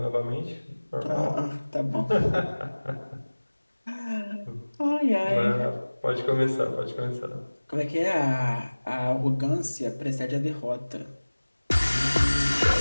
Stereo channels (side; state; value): both; inverted; correlation -1.00